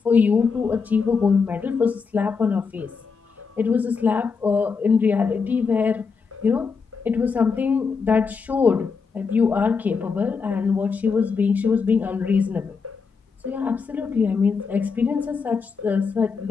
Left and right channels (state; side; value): quieter; right; 5.3 dB